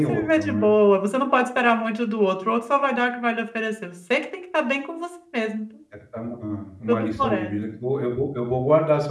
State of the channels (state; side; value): identical; both; correlation 1.00